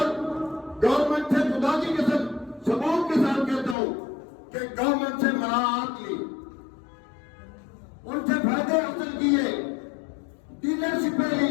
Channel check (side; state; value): right; drops out; at 3.8 s